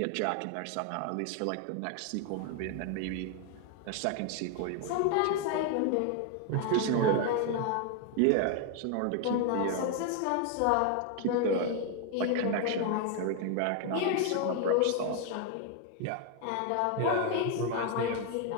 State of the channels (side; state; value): both; different; correlation 0.01